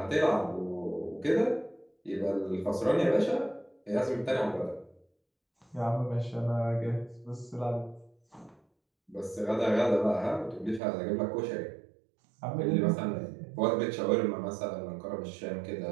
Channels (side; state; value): left; drops out; at 10.8 s